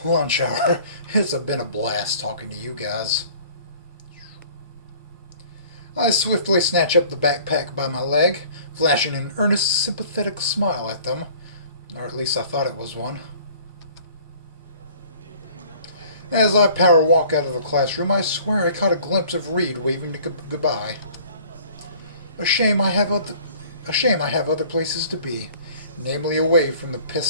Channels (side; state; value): both; inverted; correlation -0.51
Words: Lunch hour. It's been a blast talking to you guys. I swiftly snatch up the backpack by my leg, flashing an earnest, sympathetic smile at them. Or at least I thought it was one. As I power walk out of the classroom, I swear I caught a glimpse of Reed waving to goodbye. A shame I have other places to be, namely away from the